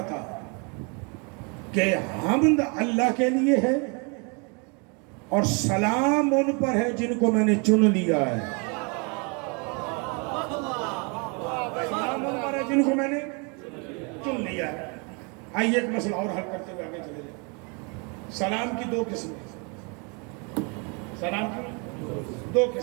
کہ حمد اللہ کے لیے ہے اور سلام ان پر ہے جن کو میں نے چن لیا ہے۔ سلام ان پر ہے جن کو میں نے چن لیا ہے۔ آئیے ایک مسئلہ اور حل کرتے ہوئے آگے چلے جائیں۔ سلام کی دو قسمیں، سلام کی دو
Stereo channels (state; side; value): quieter; left; 33.1 dB